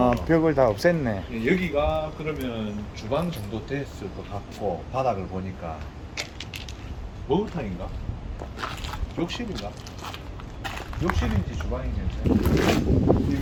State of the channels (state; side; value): identical; both; correlation 1.00